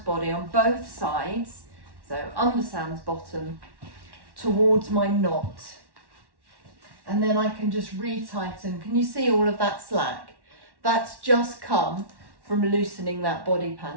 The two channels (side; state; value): left; late; 1.1 ms